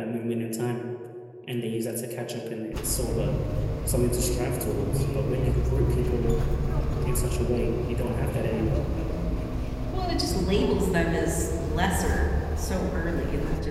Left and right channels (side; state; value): both; identical; correlation 1.00